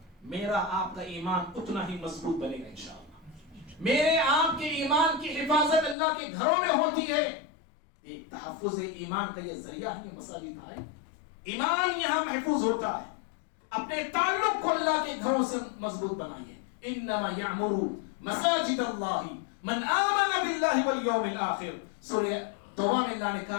میرا آپ کا ایمان اتنا ہی مضبوط بنے گا انشاءاللہ۔ میرے آپ کے ایمان کی حفاظت اللہ کے گھروں میں ہوتی ہے۔ ایک تحفظ ایمان کا یہ ذریعہ ہے، یہ مساجد ہے، ایمان یہاں محفوظ ہوتا ہے۔ اپنے تعلق کو اللہ کے گھروں سے مضبوط بنائیے۔ انما یعمر مساجد اللہ من آمن باللہ والیوم الآخر، سورہ توبہ میں اللہ نے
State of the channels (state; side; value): drops out; right; at 6.0 s